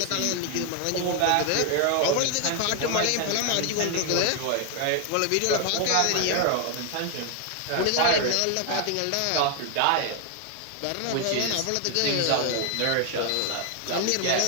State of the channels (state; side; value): different; both; correlation 0.00